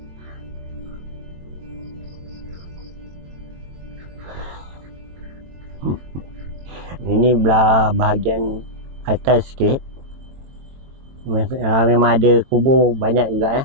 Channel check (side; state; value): left; late; 22 ms